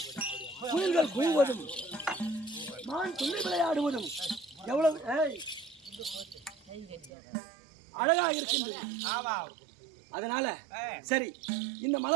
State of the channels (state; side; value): drops out; left; at 7.1 s